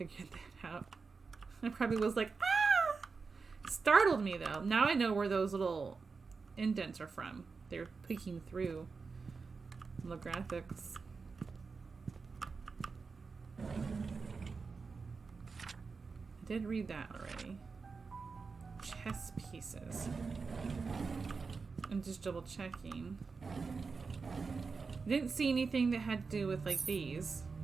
that out. I probably was like, ah! Startled me though. Now I know where those little indents are from. They're peeking through the graphics. I did read that already. Chess pieces. I'm just double checking. I didn't see anything that had to do with like these.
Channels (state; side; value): quieter; left; 4.7 dB